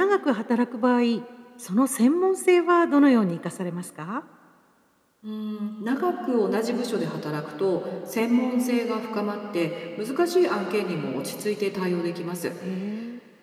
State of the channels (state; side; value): identical; both; correlation 1.00